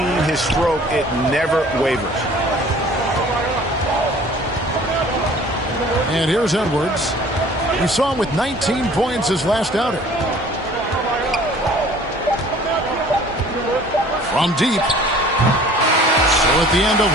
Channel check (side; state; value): both; normal; correlation 0.50